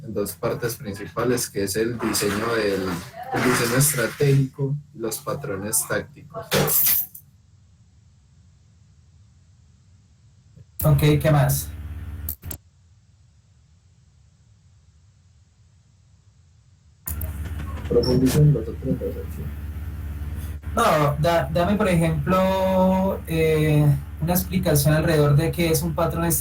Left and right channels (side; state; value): both; identical; correlation 1.00